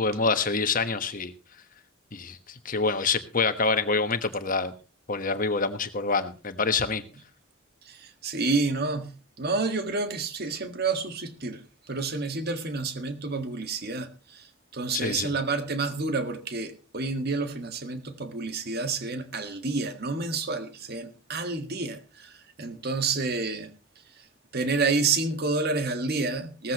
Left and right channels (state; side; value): normal; both; correlation 0.11